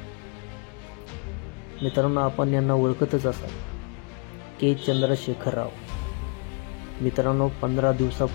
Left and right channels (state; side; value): quieter; right; 35.3 dB